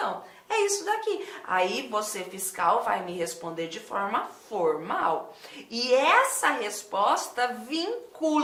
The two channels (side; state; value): both; identical; correlation 1.00